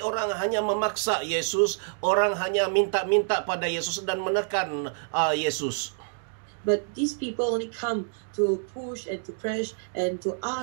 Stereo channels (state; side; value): silent; left; digital silence